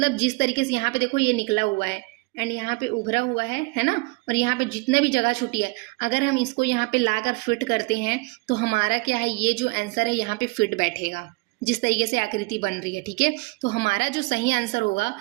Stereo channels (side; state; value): left; quieter; 27.0 dB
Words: जिस तरीके से यहाँ पे देखो ये निकला हुआ है एंड यहाँ पे उभरा हुआ है ना। और यहाँ पे जितना भी जगह छुटी है, अगर हम इसको यहाँ पे लाकर फिट करते हैं तो हमारा क्या है, ये जो आंसर है यहाँ पे फिट बैठेगा, जिस तरीके से आकृति बन रही है, ठीक है। तो हमारा जो सही आंसर होगा